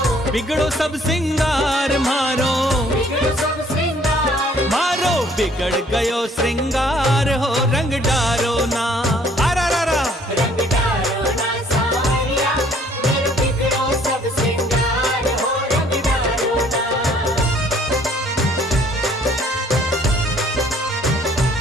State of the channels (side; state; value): both; normal; correlation 0.60